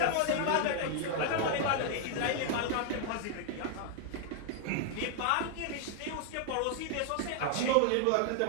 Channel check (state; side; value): different; both; correlation 0.00